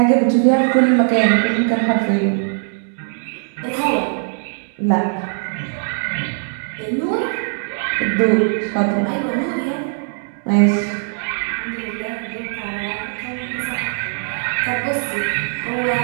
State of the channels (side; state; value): left; silent; digital silence